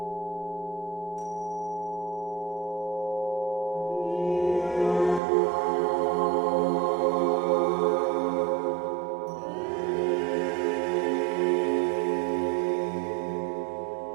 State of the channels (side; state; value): left; drops out; at 5.2 s